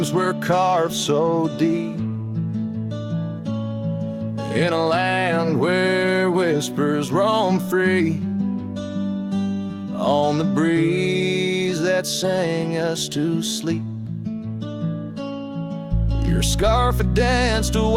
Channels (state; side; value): identical; both; correlation 1.00